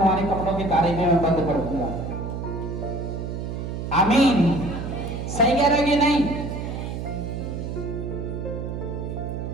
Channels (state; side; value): noise; right; hum, 5 dB below the sound